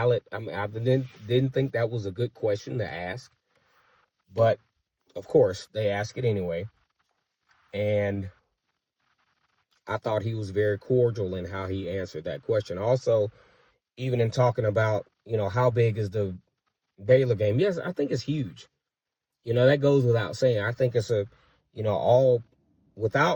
I didn't think that was a good question to ask. But, of course, they ask it anyway. And I thought he was very cordial in how he answered that question. Also, even in talking about, how big is the Baylor game. Yes, I think it's huge. That goes without saying. I think it's all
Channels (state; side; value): identical; both; correlation 1.00